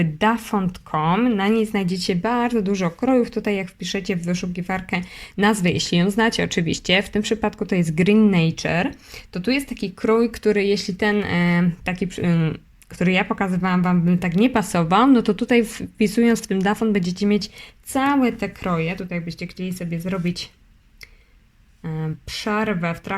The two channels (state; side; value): identical; both; correlation 1.00